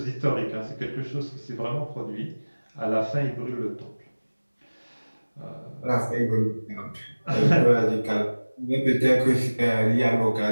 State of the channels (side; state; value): both; inverted; correlation -1.00